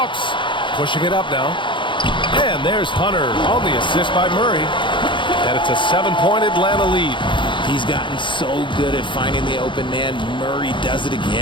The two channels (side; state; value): right; late; 0.23 ms